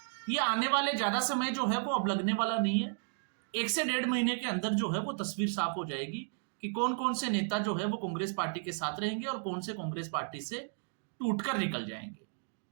ये आने वाले ज्यादा समय जो है वो अब लगने वाला नहीं है। 1 से 1.5 महीने के अंदर जो है वो तस्वीर साफ हो जाएगी कि कौन कौन से नेता जो है वो कांग्रेस पार्टी के साथ रहेंगे और कौन से कांग्रेस पार्टी से टूटकर निकल जाएंगे।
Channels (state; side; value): silent; left; digital silence